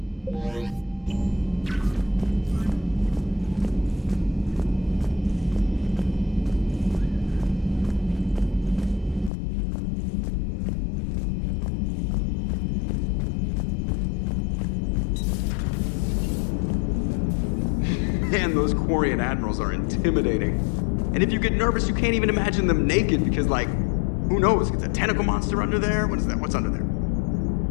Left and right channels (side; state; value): right; drops out; at 9.3 s